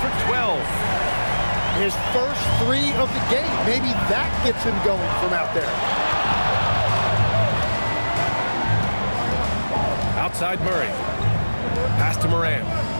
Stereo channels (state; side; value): inverted; both; correlation -1.00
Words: 12. His first 3 of the game. Maybe that gets him going from out there. Outside Murray. Pass to Morant.